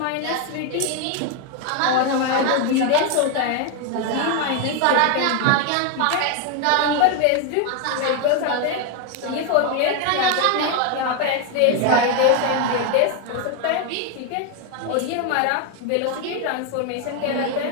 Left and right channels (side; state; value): both; different; correlation 0.01